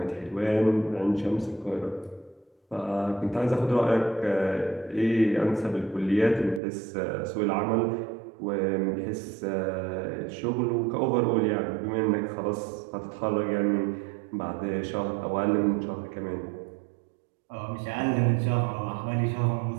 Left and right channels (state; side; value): drops out; left; at 6.6 s